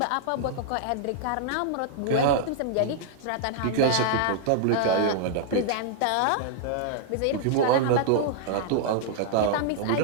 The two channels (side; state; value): both; different; correlation -0.01